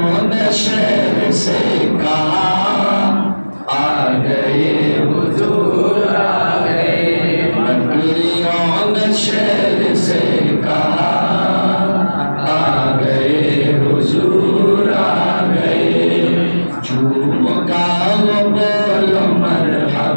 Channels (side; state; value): both; inverted; correlation -1.00